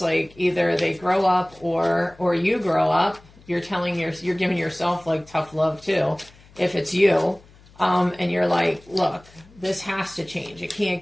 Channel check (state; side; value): noise; left; hum, 26 dB below the sound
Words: either they grow up or you grow up. You're giving yourself, like, tough love too, if it's you, and you're like, look, this has to change. It